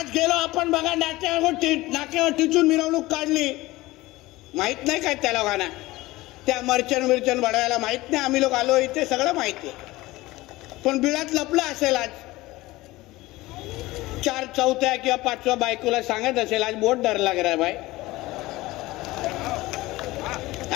गेलो आपण बघा, नाक्यावर टिचून मिरवणूक काढली. माहित नाही काय त्या लोकांना, त्या मर्चन बडवायला माहित नाही आम्ही लोक आलो इथे, सगळं माहिती आहे. पण बिळात लपलं असेल. आज 4 चौथ्या किंवा 5व्या बायकोला सांगत असेल आज बहुत डर लग रहा है भाई,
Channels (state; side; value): quieter; right; 19.2 dB